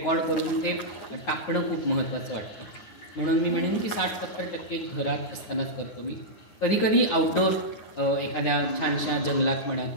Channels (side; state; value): right; late; 9.5 ms